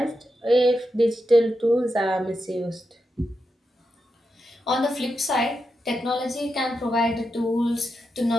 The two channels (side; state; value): both; normal; correlation 0.87